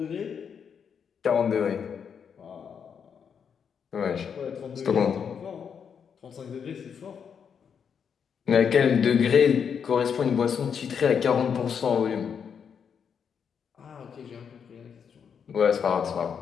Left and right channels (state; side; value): quieter; right; 7.1 dB